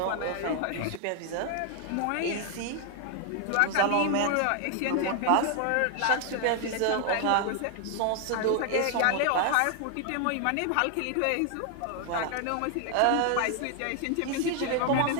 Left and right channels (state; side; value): different; both; correlation 0.00